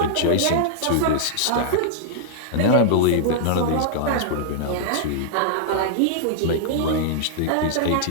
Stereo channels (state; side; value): different; both; correlation -0.01